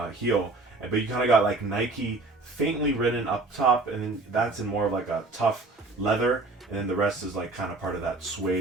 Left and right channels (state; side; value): quieter; left; 3.3 dB